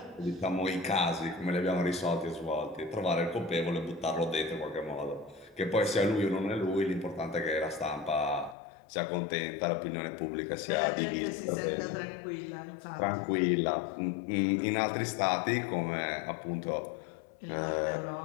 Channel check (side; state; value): right; drops out; at 8.6 s